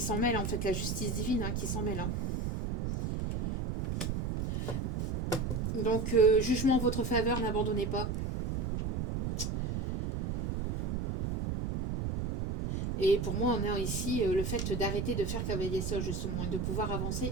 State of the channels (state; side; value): noise; right; rumble, 2 dB below the sound